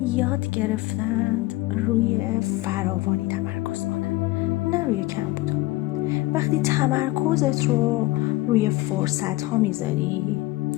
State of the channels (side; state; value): right; quieter; 18.8 dB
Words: یاد گرفتند روی فراوانی تمرکز کنن، نه روی کم بودن. وقتی تمرکزت رو روی فرصت ها میذاری،